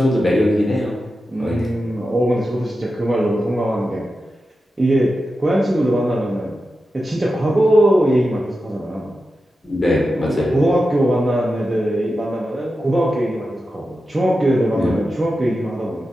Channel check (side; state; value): both; normal; correlation 0.91